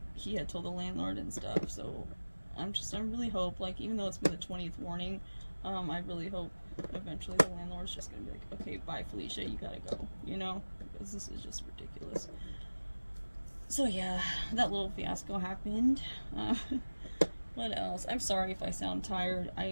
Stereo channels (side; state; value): both; inverted; correlation -1.00